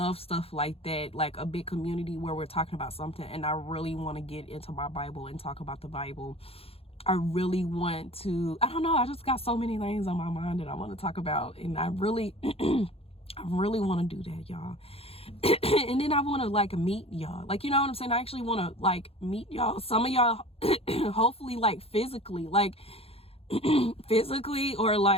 stuff like that, like a big community where we're talking about something, and I really want to get into my Bible and talk about the Bible. I really want to, I don't know, I just got so many things on my mind that I want to talk about, and I really I really want to do that, y'all. And then I want to, like, meet y'all, like, you know what I'm saying? I actually want to, like, meet y'all, some of y'all, hopefully, like, physically, or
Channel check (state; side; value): late; right; 0.28 ms